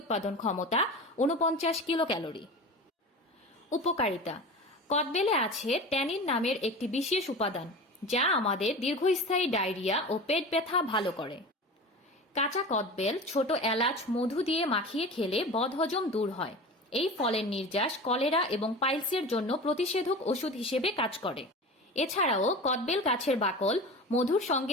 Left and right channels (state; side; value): normal; both; correlation 0.33